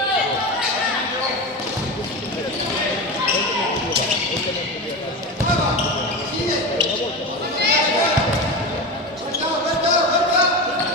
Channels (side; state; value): both; normal; correlation 0.22